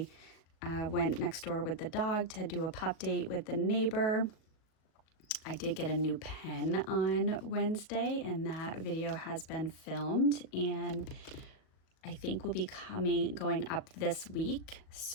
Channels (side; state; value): right; late; 38 ms